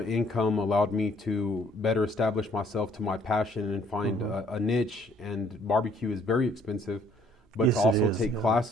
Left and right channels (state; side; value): normal; both; correlation 0.63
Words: income allowed me to better establish myself to my passion and find a niche. And barbecue is very expensive, but to also take